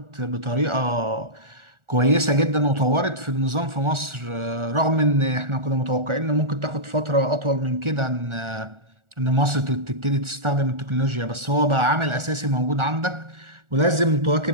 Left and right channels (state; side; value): late; left; 1.4 ms